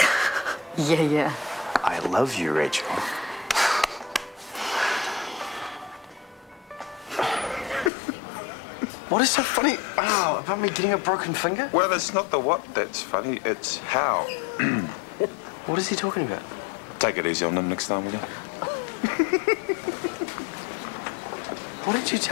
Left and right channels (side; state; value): right; drops out; at 7.9 s